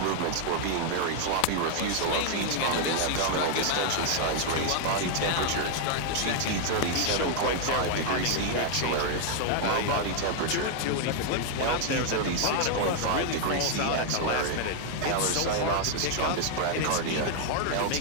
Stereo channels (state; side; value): different; both; correlation 0.00